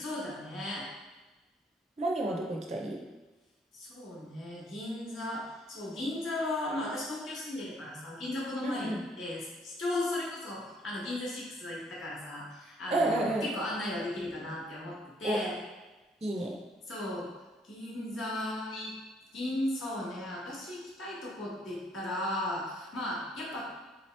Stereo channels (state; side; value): normal; both; correlation 0.65